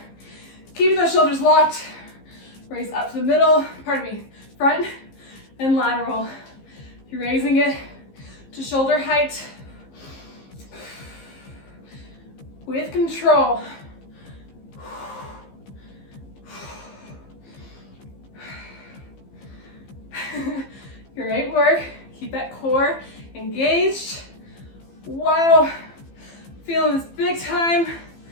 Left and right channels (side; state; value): right; late; 15 ms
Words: Keeping those shoulders locked. Raise up to the middle, front and lateral. You're raising it to shoulder height with control. Great work. Keep that core engaged. Wow. Feeling this big time